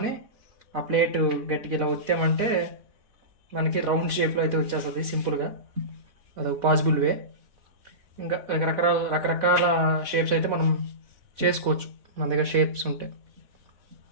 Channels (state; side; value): late; left; 4.1 ms